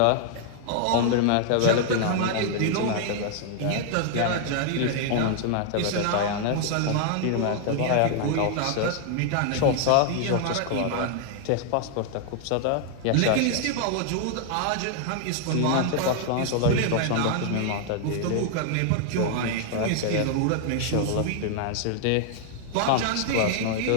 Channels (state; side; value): different; both; correlation 0.00